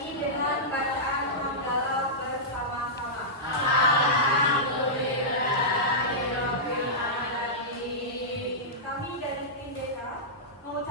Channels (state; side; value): normal; both; correlation -0.13